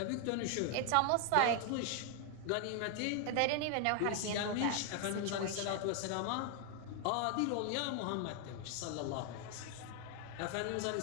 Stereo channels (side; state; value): both; different; correlation 0.00